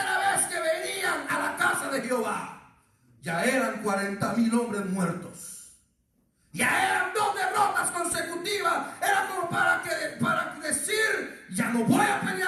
vez que venían a la casa de Jehová. Ya eran 40,000 hombres muertos. Ya eran 2 derrotas consecutivas. Era como para decir, ya no voy a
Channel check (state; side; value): identical; both; correlation 1.00